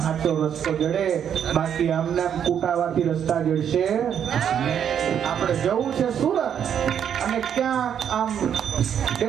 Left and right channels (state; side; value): quieter; left; 8.7 dB